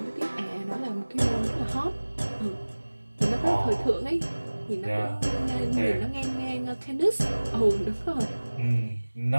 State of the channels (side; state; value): both; inverted; correlation -1.00